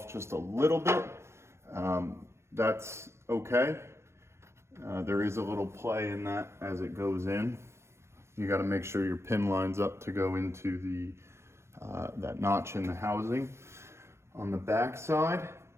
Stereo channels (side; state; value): left; late; 0.13 ms